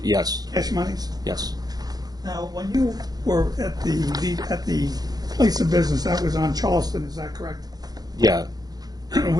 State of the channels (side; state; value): left; late; 0.19 ms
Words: yes. cash monies. Yes. Now, when you were at the place of business, that was on Charleston, is that correct? Yeah.